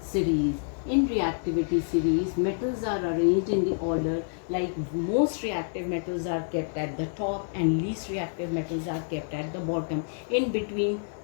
series. In reactivity series, metals are arranged in the order like most reactive metals are kept at the top and least reactive metals are kept at the bottom. In between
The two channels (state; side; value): silent; right; digital silence